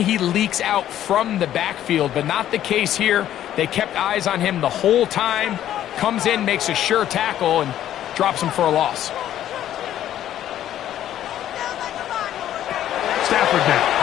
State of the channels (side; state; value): right; quieter; 11.8 dB